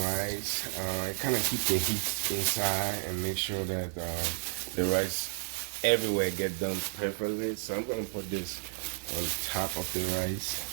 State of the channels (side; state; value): left; silent; digital silence